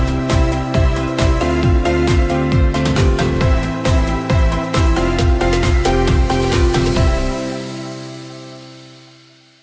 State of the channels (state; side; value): identical; both; correlation 1.00